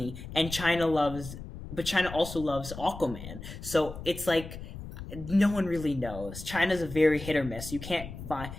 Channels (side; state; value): left; noise; rumble, 11 dB below the sound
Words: and but China also loves Aquaman. So it's like no one really knows. China's a very hit or miss. You can't find